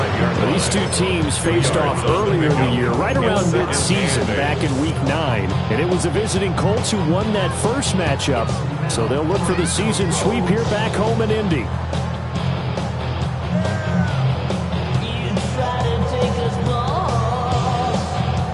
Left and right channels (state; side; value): identical; both; correlation 1.00